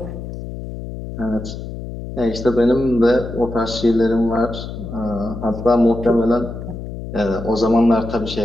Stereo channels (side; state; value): left; noise; hum, 9 dB below the sound